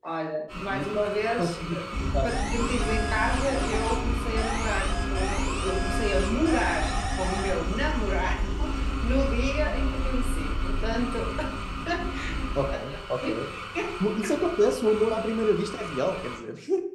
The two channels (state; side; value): identical; both; correlation 1.00